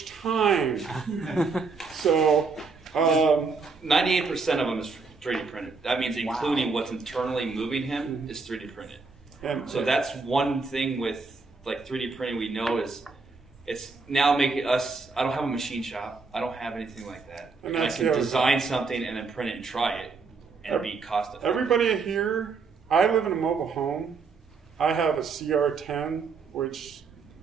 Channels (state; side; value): quieter; left; 4.5 dB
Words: time. So 98% of them is 3D printed. That means including what's internally moving him is 3D printed. And so that's one thing with like 3D printing we know is it's now making us, I don't have a machine shop. I don't have anything like that. And I can design something and then print it and try it and be cost effective. Everybody here, I live in a mobile home. I have a CR10, which